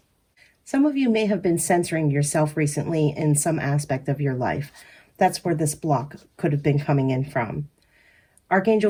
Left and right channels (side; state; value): both; identical; correlation 1.00